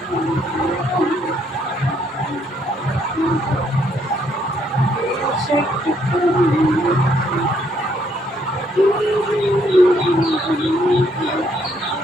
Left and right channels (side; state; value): both; normal; correlation 0.70